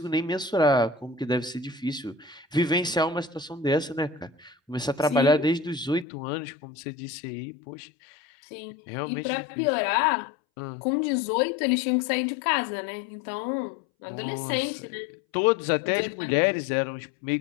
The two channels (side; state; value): right; drops out; at 6.1 s